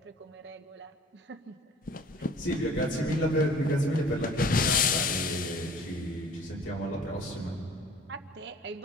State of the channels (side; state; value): both; normal; correlation 0.49